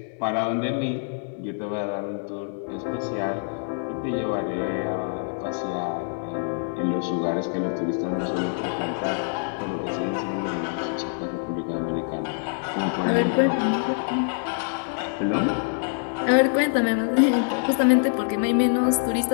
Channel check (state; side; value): silent; right; digital silence